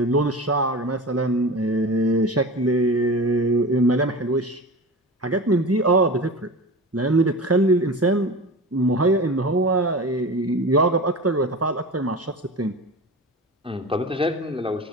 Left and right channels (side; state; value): both; normal; correlation 0.31